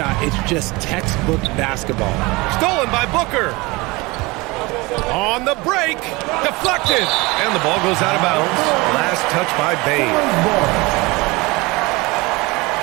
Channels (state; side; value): quieter; left; 23.8 dB